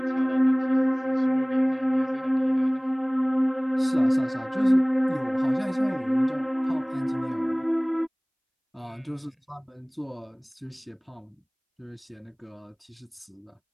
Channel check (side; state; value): both; identical; correlation 1.00